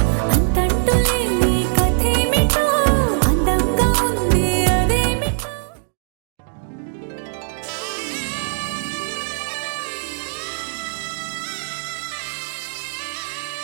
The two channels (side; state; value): left; silent; digital silence